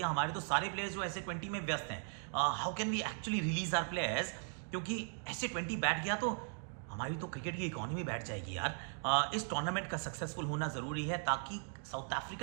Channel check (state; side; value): silent; left; 52 dB below the other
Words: हमारे तो सारे प्लेयर्स जो SA-20 में व्यस्त हैं, how can we actually release our players, क्योंकि SA-20 बैठ गया तो हमारी तो क्रिकेट की इकोनॉमी बैठ जाएगी यार। इस टूर्नामेंट का सक्सेसफुल होना ज़रूरी है ताकि साउथ